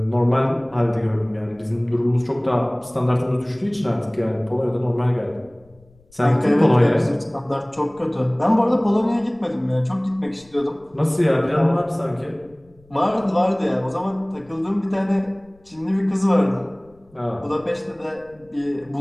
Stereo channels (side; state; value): left; noise; rumble, 30 dB below the sound